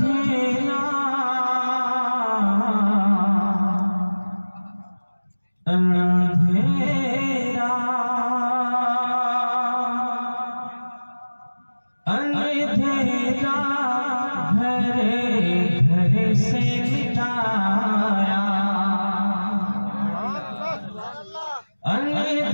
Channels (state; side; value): inverted; both; correlation -1.00